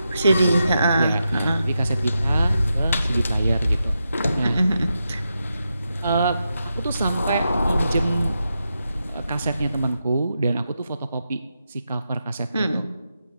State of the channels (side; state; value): both; inverted; correlation -0.87